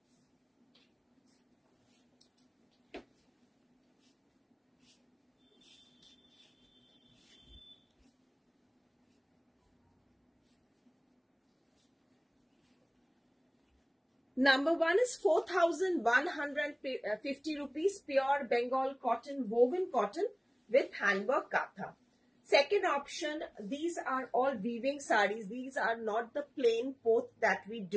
Number 1 is 4,150 rupees, pure Bengal cotton, woven cotton with handwork katha. Second option, these are all weaving saris. These are not the plain poth that we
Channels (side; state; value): both; identical; correlation 1.00